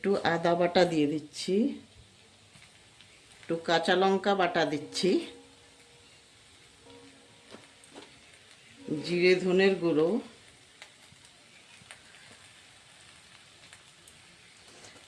আদা বাটা দিয়ে দিচ্ছি। একটু কাঁচা লঙ্কা বাটা দিচ্ছি, জিরে ধনের গুঁড়ো,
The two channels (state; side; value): identical; both; correlation 1.00